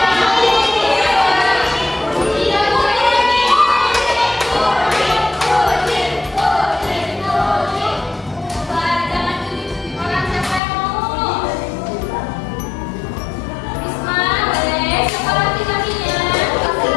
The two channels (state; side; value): drops out; right; at 10.6 s